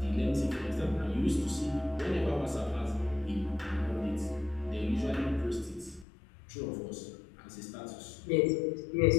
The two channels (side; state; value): right; drops out; at 6.1 s